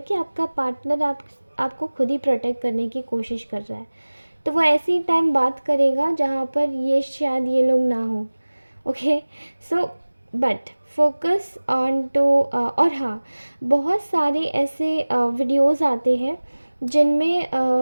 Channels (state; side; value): inverted; both; correlation -1.00